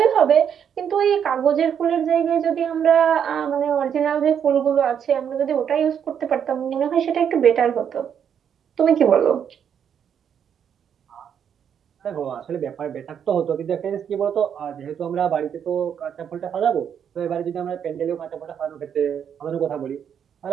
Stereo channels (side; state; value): left; quieter; 8.3 dB